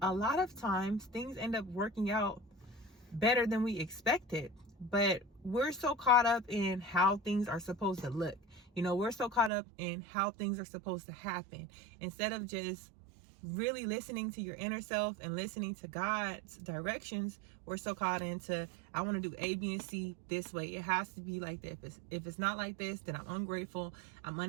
a lot of times, things end up working out better than we expected. But we're so caught up in how things are supposed to look. We're so caught up in how things are supposed to happen, instead of just really listening to your inner self and listening to God's directions. We're so caught into, I want to do A, B, and C this way. It has to be like this. If it's not like this, then I'm ungrateful, I'm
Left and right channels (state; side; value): drops out; left; at 9.5 s